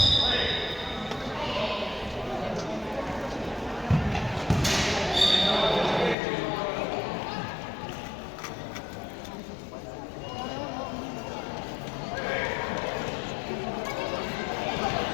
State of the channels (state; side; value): drops out; right; at 6.2 s